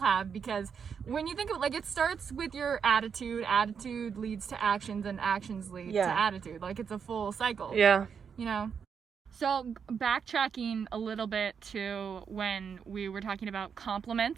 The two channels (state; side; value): quieter; left; 6.7 dB